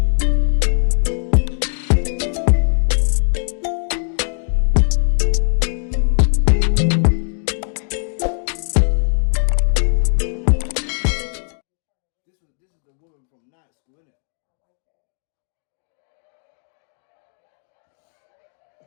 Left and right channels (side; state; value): right; silent; 66 dB below the other